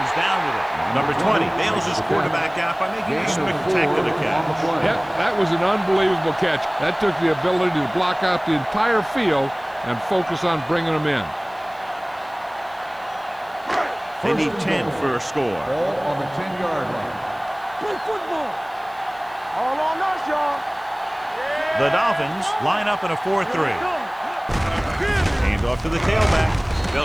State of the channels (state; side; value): noise; left; hiss, 29 dB below the sound